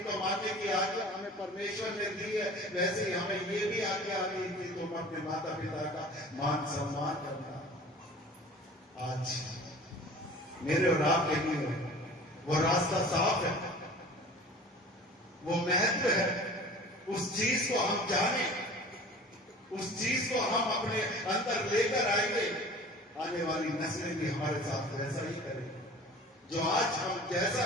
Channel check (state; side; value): normal; both; correlation 0.43